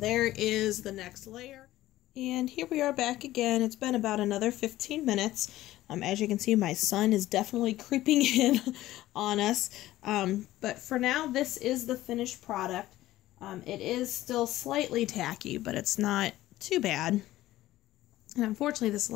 is the next layer. And here we are back again. It's been about another 15 minutes. As you can see, my son is definitely creeping in on us. But for now, this is the finished product. It is still slightly tacky, but it's not too bad. And unfortunately, this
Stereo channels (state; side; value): quieter; right; 15.5 dB